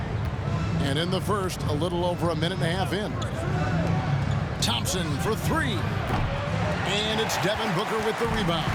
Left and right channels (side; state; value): both; identical; correlation 1.00